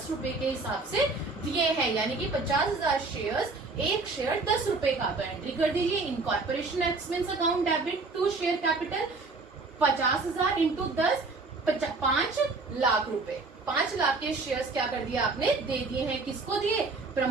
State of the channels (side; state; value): left; quieter; 3.7 dB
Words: रुपए के हिसाब से दिए हैं, यानी कि 50,000 शेयर्स, एक शेयर 10 रुपए का। तो एंट्री कर दीजिए incorporation expense account debit to share capital 50,000 into 10 5 lakh रुपए। 5 लाख के शेयर्स क्या कर दिया आपने, दे दिए हैं, किसको दिए,